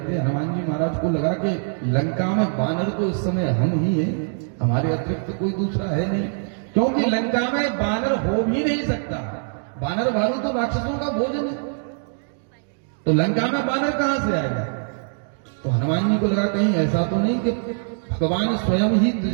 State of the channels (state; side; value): silent; left; 63 dB below the other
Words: हनुमान जी महाराज को लगा कि लंका में बानर तो इस समय हम ही हैं, हमारे अतिरिक्त कोई दूसरा है नहीं, क्योंकि लंका में बानर हो भी नहीं सकता। बानर भालू तो राक्षसों का भोजन है, तो लंका में बानर कहां से आएगा? तो हनुमान जी को लगा कहीं ऐसा तो नहीं कि भगवान स्वयं ही